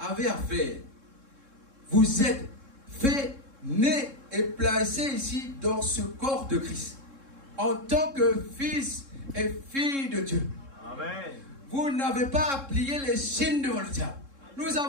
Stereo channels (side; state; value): left; late; 3.7 ms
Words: à faire, vous êtes fait, né et placé ici dans ce corps de Christ. En tant que fils et fille de Dieu. Amen. Vous n'avez pas à plier les chaînes devant le diable. Nous